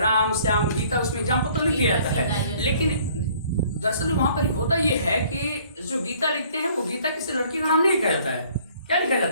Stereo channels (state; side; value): inverted; both; correlation -0.57